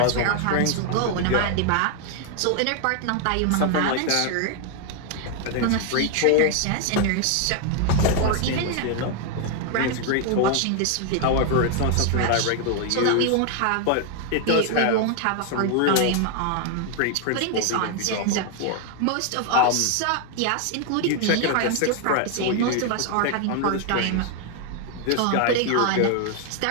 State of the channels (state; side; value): different; both; correlation 0.00